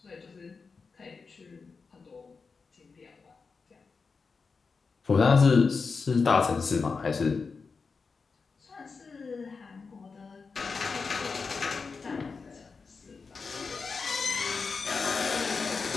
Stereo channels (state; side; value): quieter; right; 4.8 dB